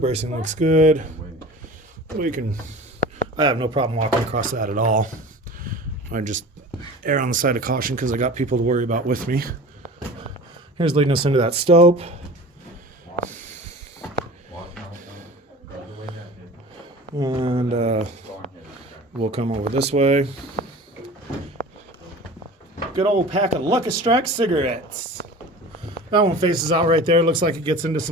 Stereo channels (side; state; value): both; normal; correlation 0.39